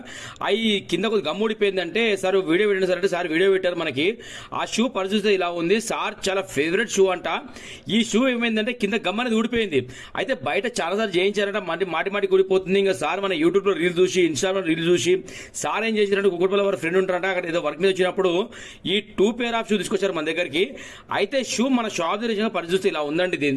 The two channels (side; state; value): both; identical; correlation 1.00